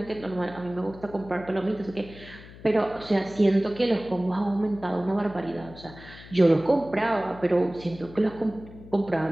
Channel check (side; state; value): left; noise; hum, 18 dB below the sound